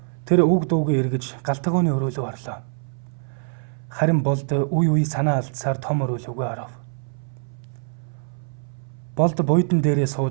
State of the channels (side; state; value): left; silent; 63 dB below the other